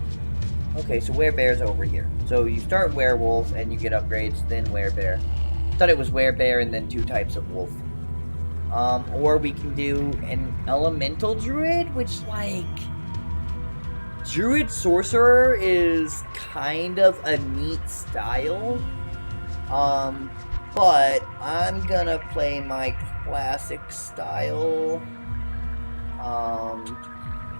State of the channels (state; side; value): inverted; both; correlation -1.00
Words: Okay, so Werebear's over here. So you start Werewolf and you get upgrades, then Werebear. I thought it was Werebear and then 2 types of wolf. Or we can do an Elemental Druid, which, like... Druid Sorcerer is kind of a neat style. But I'm gonna play my classic style.